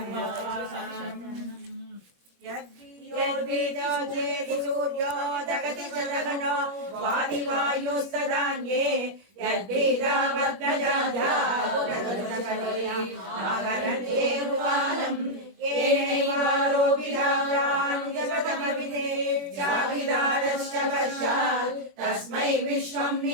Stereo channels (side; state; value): left; late; 21 ms